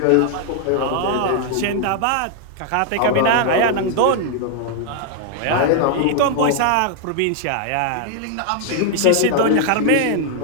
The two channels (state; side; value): different; both; correlation 0.00